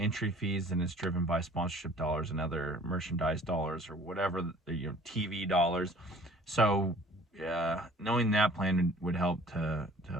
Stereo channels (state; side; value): normal; both; correlation 0.51